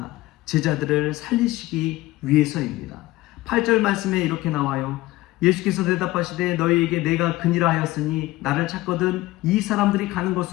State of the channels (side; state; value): right; quieter; 18.2 dB